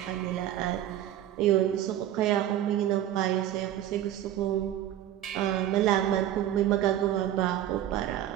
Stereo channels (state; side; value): quieter; left; 12.2 dB